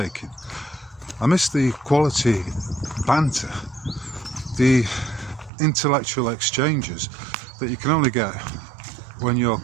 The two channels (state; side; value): drops out; left; at 5.5 s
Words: I missed the quality banter, the intellectual exchanges that you can only get when you're